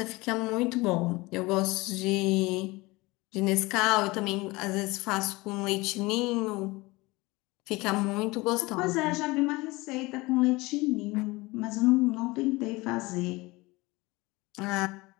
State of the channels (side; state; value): right; quieter; 22.4 dB